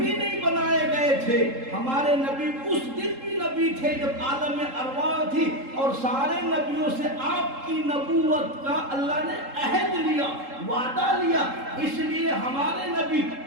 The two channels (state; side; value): late; left; 3.7 ms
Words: نہیں بنائے گئے تھے، ہمارے نبی اس دن بھی نبی تھے جب عالم ارواح تھی، اور سارے نبیوں سے آپ کی نبوت کا اللہ نے عہد لیا، وعدہ لیا، اس لیے ہمارے نبی